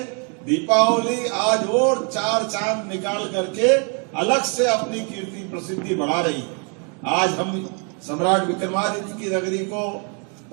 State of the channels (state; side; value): quieter; left; 37.8 dB